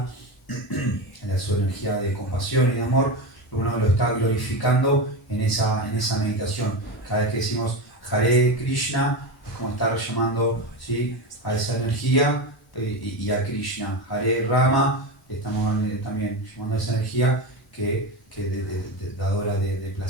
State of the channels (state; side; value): normal; both; correlation 0.19